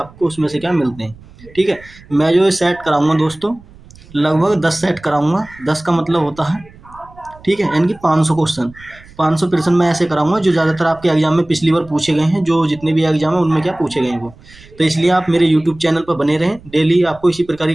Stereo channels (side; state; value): right; noise; rumble, 23 dB below the sound